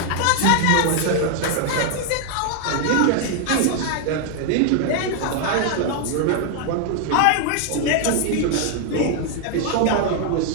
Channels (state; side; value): different; both; correlation 0.00